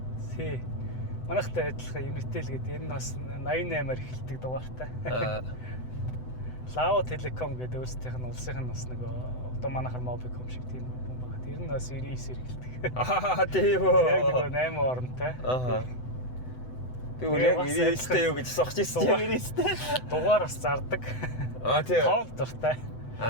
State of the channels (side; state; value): right; late; 7.9 ms